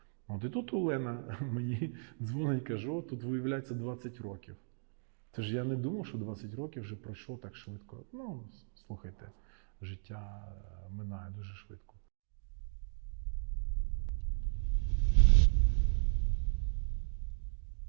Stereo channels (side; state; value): left; silent; digital silence